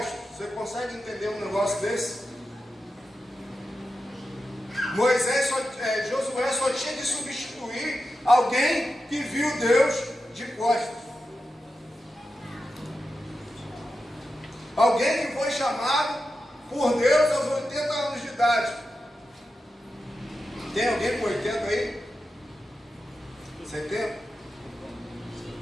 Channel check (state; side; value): normal; both; correlation 0.90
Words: Você consegue entender um negócio desse? Josué só tinha de substituir alguém que viu Deus de costas. Alguém que foi chamado por Deus aos 80 anos de idade. Tem alguém com 80 aí? 70?